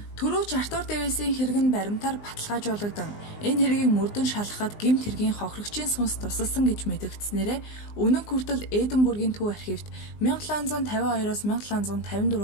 Төрөөч Артур Дэвисийн хэрэг нь баримтаар баталгаажуулагдсан. Энэ хэргийг мөрдөн шалгахад гэмт хэргийн хохирогчийн сүнс тусалсан гэж мэдэгдснээрээ өнөө хүртэл Эдинбургийн төв архивт 1752-оос 1754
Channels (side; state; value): right; late; 19 ms